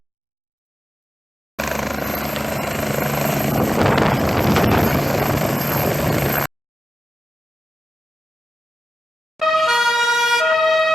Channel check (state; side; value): normal; both; correlation 0.93